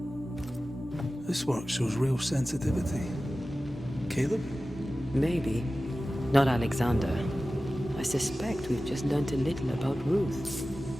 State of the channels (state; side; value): normal; both; correlation 0.95